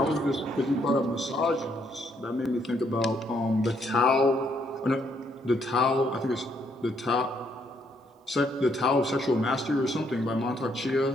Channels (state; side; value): normal; both; correlation 0.72